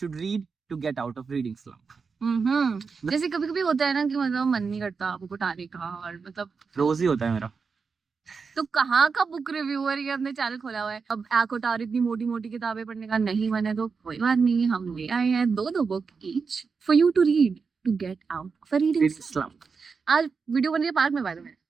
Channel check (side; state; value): left; quieter; 5.2 dB